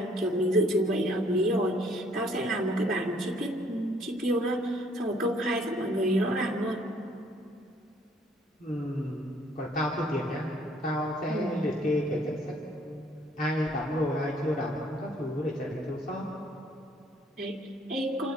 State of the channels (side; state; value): both; normal; correlation 0.62